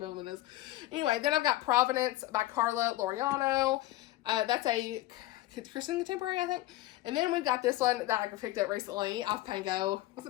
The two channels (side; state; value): right; quieter; 16.3 dB